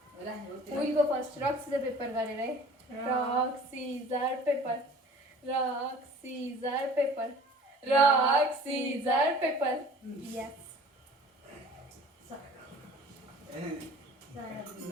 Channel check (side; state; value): both; normal; correlation 0.46